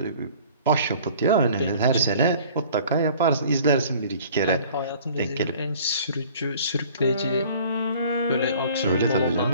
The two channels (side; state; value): both; inverted; correlation -0.50